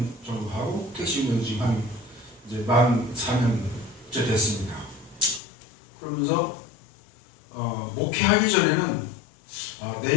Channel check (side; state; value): right; drops out; at 5.4 s